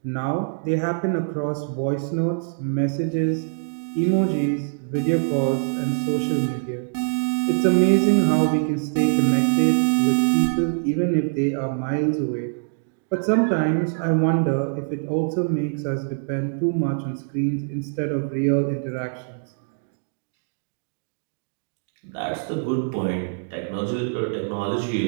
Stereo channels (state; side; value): silent; left; digital silence